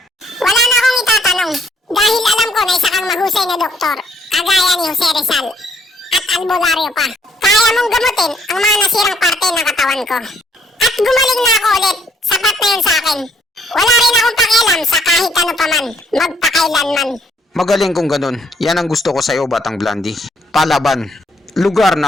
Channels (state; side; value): normal; both; correlation 0.67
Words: Wala na akong itatanong. Dahil alam ko na isa kang mahusay na doktor. Kagaya ni Jose Rizal. At albularyo pa. Kaya mong gamutin ang mga nasirang parte ng katawan ko. At gumaling na ako ulit. Sapat na yun sa akin. Wala rin akong pakialam sa kahit ano pa man. Magpakailanman. Magaling kung ganun. Yan ang gusto ko sa'yo, Batang Blandy. Palaban. Lugar na